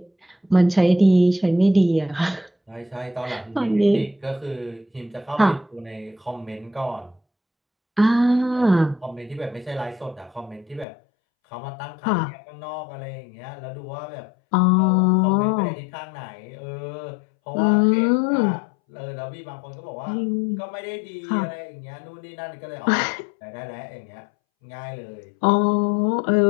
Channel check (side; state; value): right; drops out; at 10.9 s